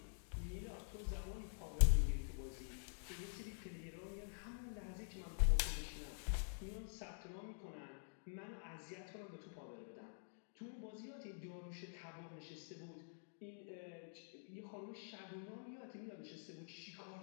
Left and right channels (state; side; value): silent; right; digital silence